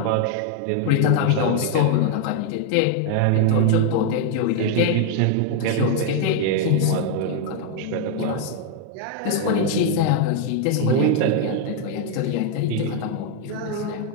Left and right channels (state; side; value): different; both; correlation 0.00